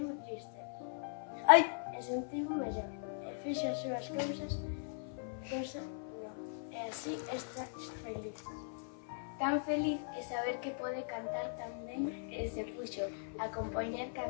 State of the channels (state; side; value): silent; right; 52 dB below the other